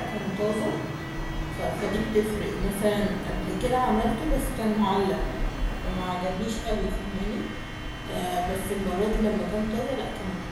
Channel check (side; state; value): both; identical; correlation 1.00